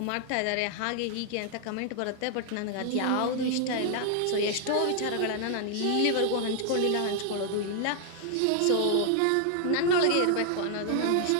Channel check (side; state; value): both; different; correlation 0.00